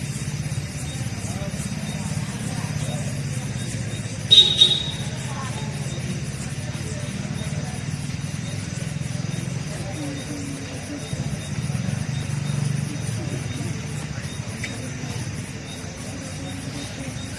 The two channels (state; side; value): identical; both; correlation 1.00